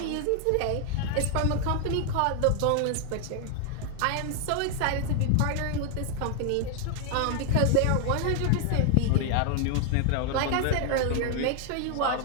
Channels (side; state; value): both; different; correlation 0.00